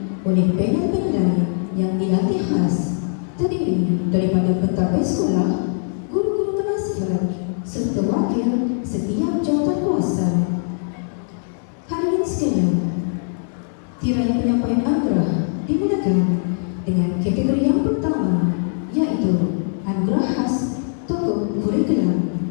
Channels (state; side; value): silent; right; digital silence